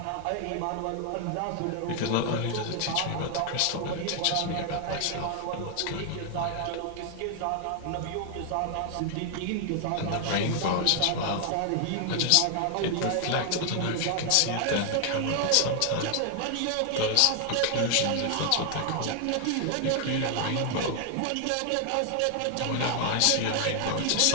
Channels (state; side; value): different; both; correlation 0.00